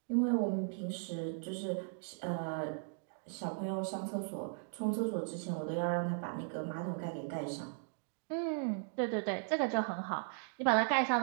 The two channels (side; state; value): left; silent; digital silence